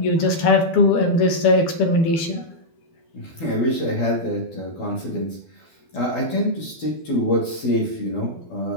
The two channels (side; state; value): right; late; 12 ms